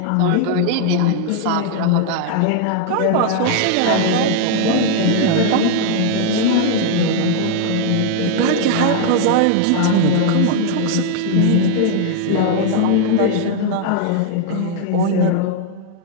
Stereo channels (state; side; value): different; both; correlation 0.00